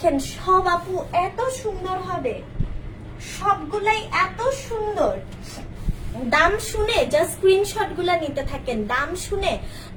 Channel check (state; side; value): identical; both; correlation 1.00